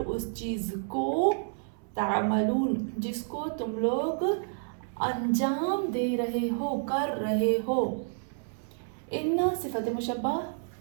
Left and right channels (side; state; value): left; silent; 58 dB below the other